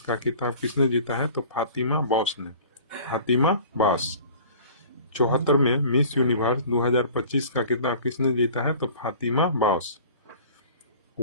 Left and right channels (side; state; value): both; inverted; correlation -0.45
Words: खिताब किसने जीता है? तो फातिमा बॉस ने। फातिमा बॉस। 74वें मिस यूनिवर्स 2025 का खिताब किसने जीता है? तो Fatima boss.